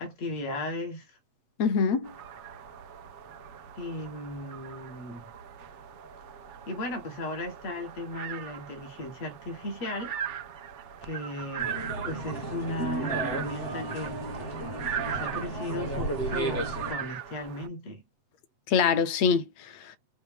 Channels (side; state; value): right; late; 7.9 ms